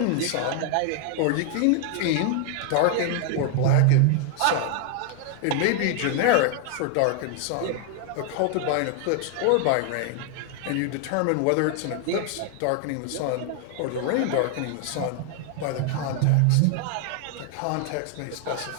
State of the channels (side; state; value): both; different; correlation 0.00